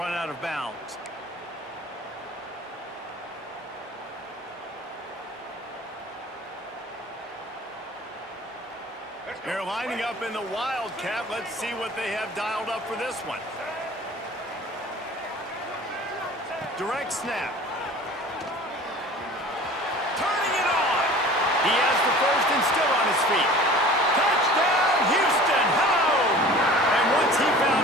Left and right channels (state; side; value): normal; both; correlation 0.43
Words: out of bounds. They're lining up in the Wildcat. Let's see what they have dialed up for this one. Direct snap. Turning it on. He has the first and still on his feet. Touchdown, Houston! Hello! And once he